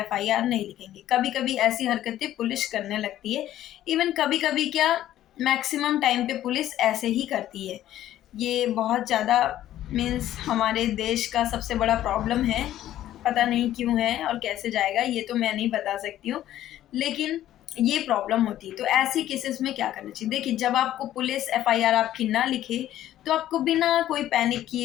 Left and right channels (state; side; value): quieter; right; 12.9 dB